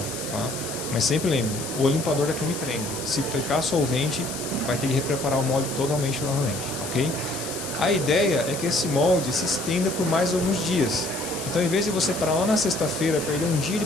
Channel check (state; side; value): noise; left; hiss, 9 dB below the sound